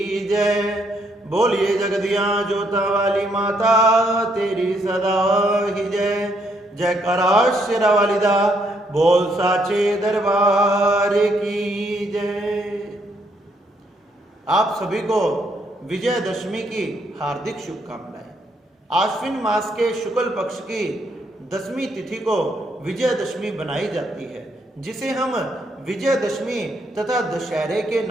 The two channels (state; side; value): normal; both; correlation 0.73